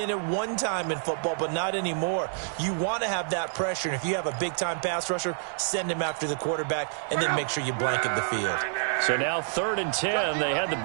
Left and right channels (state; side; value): silent; left; digital silence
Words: at one time in football, but not anymore. You want to have that pressure, and if you have a big-time pass rusher, send him after the quarterback, and then make sure you blanket the field. So now 3rd and 10. They had the